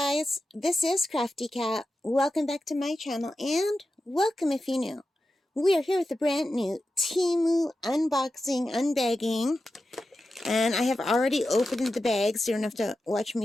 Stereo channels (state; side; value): normal; both; correlation 0.92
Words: this is Crafty Cat. Welcome back to my channel and welcome if you're new. We are here with a brand new Temu unboxing, unbagging, and I have already opened the bag so you don't have to watch